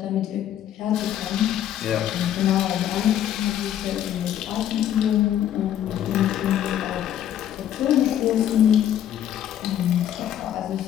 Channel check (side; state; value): right; quieter; 10.8 dB